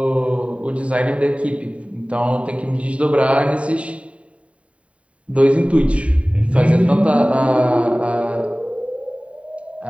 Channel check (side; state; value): left; late; 0.064 ms